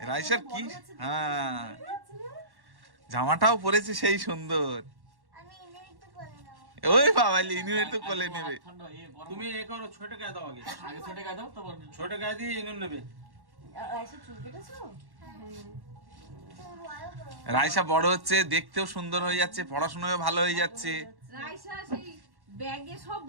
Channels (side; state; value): left; late; 1.1 ms